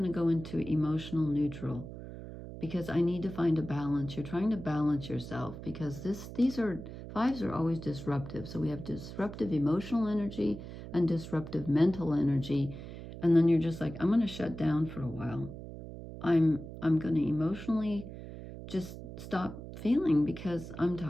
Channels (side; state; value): right; noise; hum, 11 dB below the sound